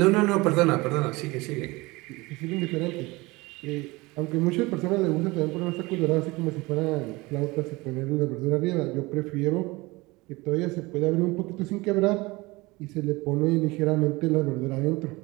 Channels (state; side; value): quieter; left; 22.7 dB